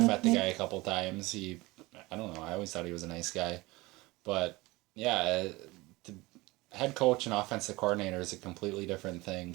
met the guy a couple times. I don't know, I always thought he was a nice guy. But, yeah, the head coach and offensive coordinator is a completely different thing.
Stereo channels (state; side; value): quieter; left; 21.7 dB